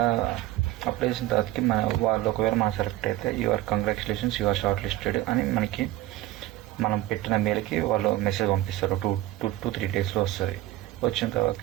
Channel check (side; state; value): left; quieter; 15.5 dB